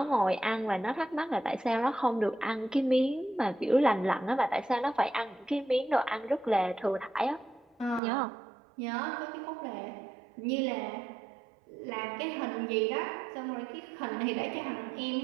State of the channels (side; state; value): left; drops out; at 8.0 s